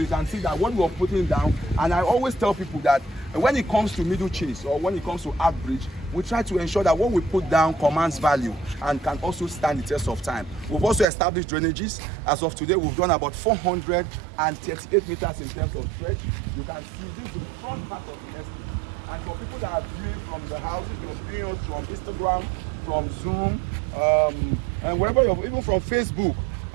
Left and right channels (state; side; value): drops out; left; at 11.1 s